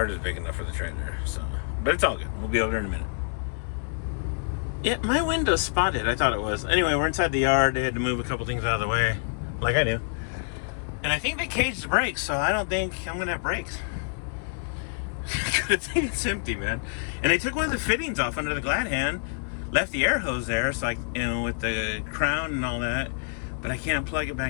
was big enough for the trailer. So, but it's all good. We'll be over there in a minute. Yeah, my window's spotted. I thought it was. Anyway, we're inside the yard. They had to move a couple things out of the way, like I do. And I think they caged the brakes, so I don't think I'm gonna have brakes. Good thing it's empty, man. And they took one of the fittings off under the glad hand, left the air hose there, so with the crown and all that. But I can't plug it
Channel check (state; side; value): silent; right; digital silence